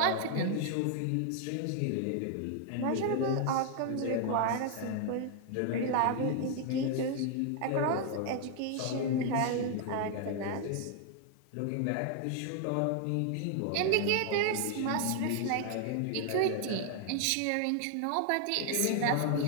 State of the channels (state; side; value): different; both; correlation 0.00